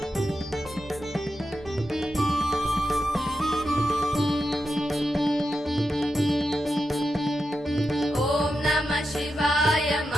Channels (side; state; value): both; normal; correlation 0.88